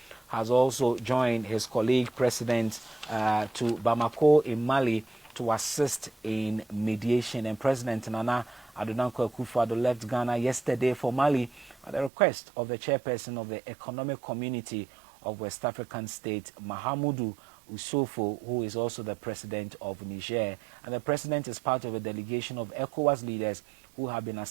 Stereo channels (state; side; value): drops out; left; at 12.1 s